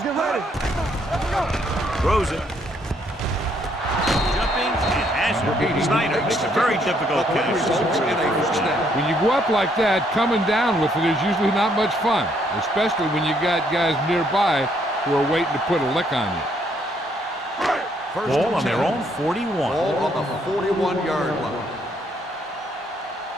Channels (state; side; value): normal; both; correlation 0.70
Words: get ready. Let's go. Throws it. Jumping and has it. Snyder makes a very difficult catch. When you go up like that, coming down with it is usually not much fun, especially when you got guys nearby who are waiting to put a lick on you. Ball on their own 41. Ball on the 41-yard line.